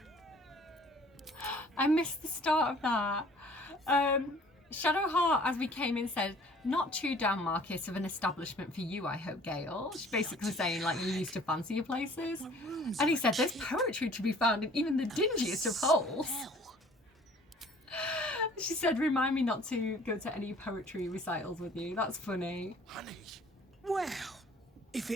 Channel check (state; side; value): normal; both; correlation 0.53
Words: I missed the start of that. Shadowheart, as we came in, said, "Not too down market of an establishment for you, I hope, Gale." She's basically saying, like, you used to fancy your places. And he said, "There's poetry to be found in even the dingiest of holes." She said, "Remind me not to go to any poetry recitals with you." That's funny. Honey. Well, if